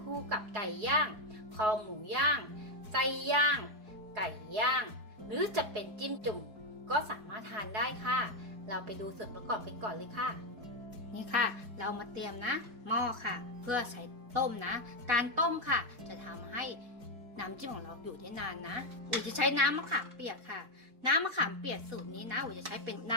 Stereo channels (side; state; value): left; late; 4.7 ms